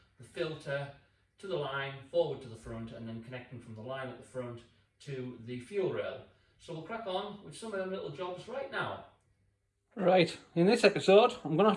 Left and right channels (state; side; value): identical; both; correlation 1.00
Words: the filter to the line, forward to the front, and then connecting from the line at the front to the fuel rail. So we'll crack on with some of them little jobs right now. Right, in this episode I'm going to